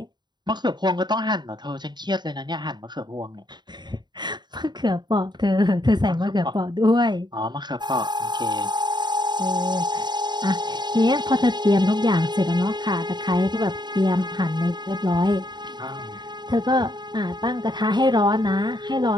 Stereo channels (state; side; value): late; left; 0.21 ms